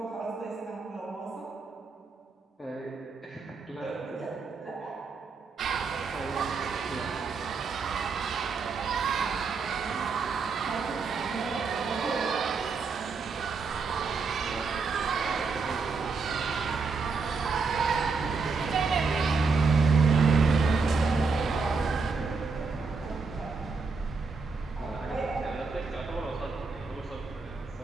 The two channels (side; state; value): left; quieter; 4.6 dB